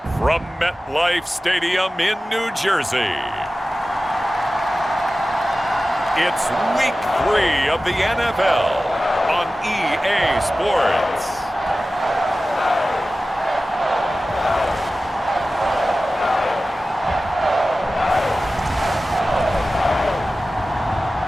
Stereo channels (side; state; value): both; normal; correlation 0.95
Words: from MetLife Stadium in New Jersey, it's Week 3 of the NFL on EA Sports.